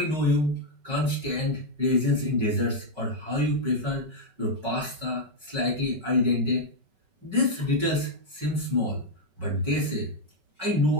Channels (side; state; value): left; late; 5.3 ms